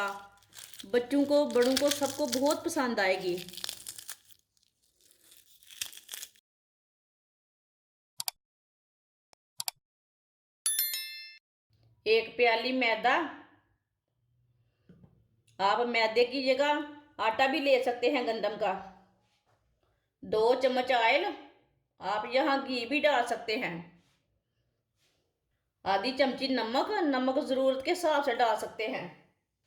बच्चों को, बड़ों को, सबको बहुत पसंद आएगी। एक प्याली मैदा, आप मैदे की जगह आटा भी ले सकते हैं गंदम का। 2 चम्मच ऑयल, आप यहाँ घी भी डाल सकते हैं। आधी चमची नमक, नमक ज़रूरत के हिसाब से डाल सकते हैं।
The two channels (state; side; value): identical; both; correlation 1.00